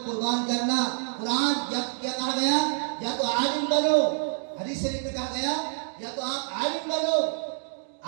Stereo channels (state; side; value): silent; left; 60 dB below the other